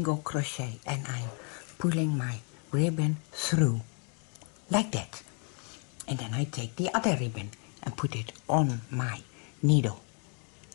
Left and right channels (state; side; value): quieter; right; 38.5 dB